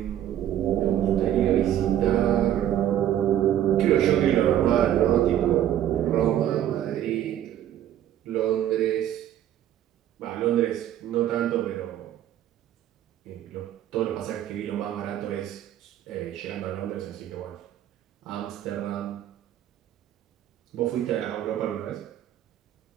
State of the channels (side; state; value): left; quieter; 11.5 dB